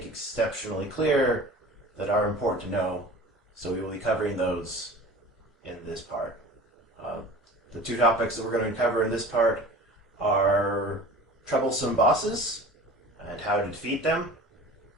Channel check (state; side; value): normal; both; correlation 0.40